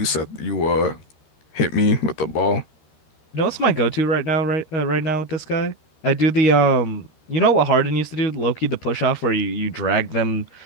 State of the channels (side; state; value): right; late; 13 ms